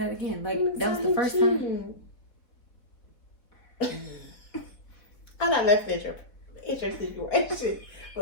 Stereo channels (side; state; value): right; late; 4.0 ms